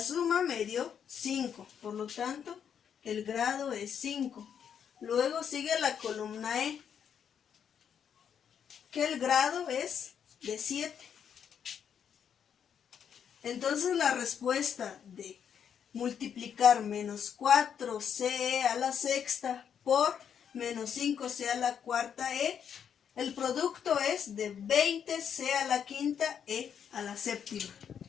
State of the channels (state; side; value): quieter; right; 8.0 dB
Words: suma me dio 5, por lo tanto el grado es 5. Luego sigue la columna E, que el grado es de 7. Entonces la respuesta de multiplicar menos 4ce a la sexta por menos 5c a la cuarta e, el producto es de 20c a la quinta e a la séptima.